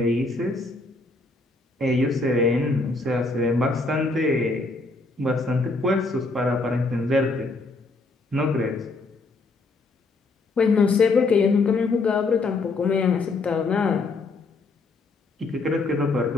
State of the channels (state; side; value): quieter; right; 3.5 dB